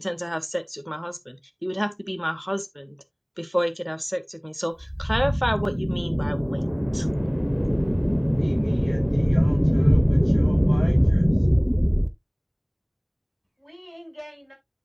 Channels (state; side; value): identical; both; correlation 1.00